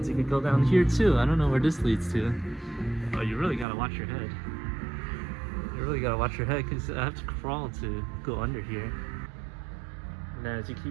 You could go down here too. I don't know where this leads to. Oh, you really gotta watch your head. You really gotta watch your head, because I have to crawl to go under here. And then as you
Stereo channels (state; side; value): drops out; left; at 3.7 s